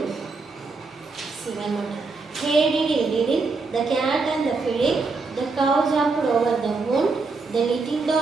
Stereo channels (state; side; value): quieter; left; 4.1 dB